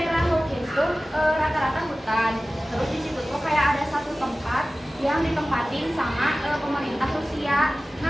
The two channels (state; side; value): normal; both; correlation 0.97